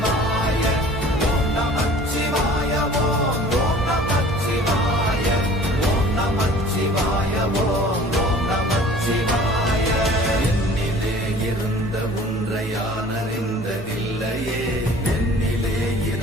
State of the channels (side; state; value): both; normal; correlation 0.47